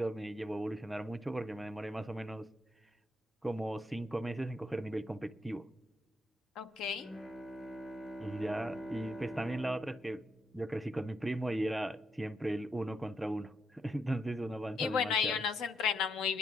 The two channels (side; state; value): both; normal; correlation 0.80